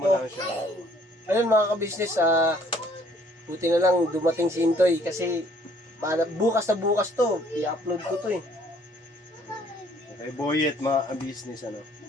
ko. lang siya. Ayun mga ka-business, buti na lang dumating si Intoy kasi bukas na bukas to, i-upload ko to eh. Okay, Boyet, mga business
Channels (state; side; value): normal; both; correlation 0.60